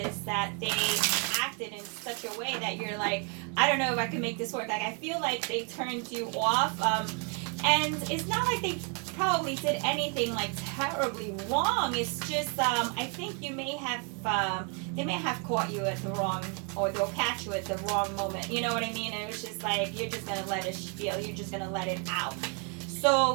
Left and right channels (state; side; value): quieter; left; 36.3 dB